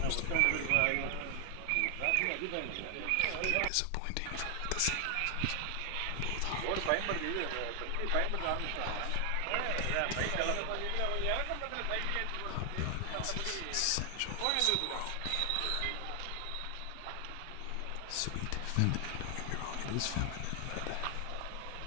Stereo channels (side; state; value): both; different; correlation 0.00